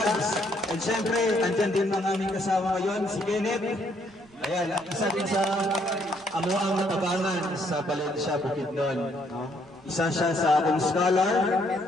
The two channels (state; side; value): noise; right; rumble, 30 dB below the sound